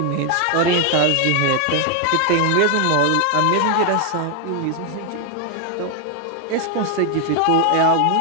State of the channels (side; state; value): both; different; correlation 0.00